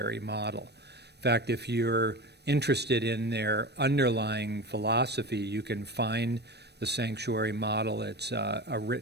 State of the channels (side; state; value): left; late; 0.49 ms